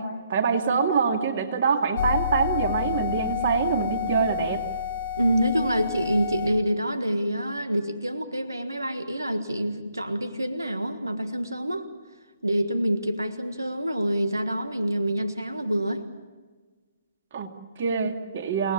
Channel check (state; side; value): inverted; both; correlation -0.72